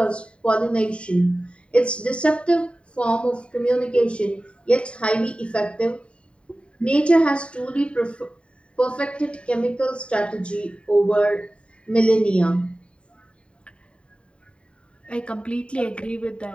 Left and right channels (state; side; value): late; right; 0.058 ms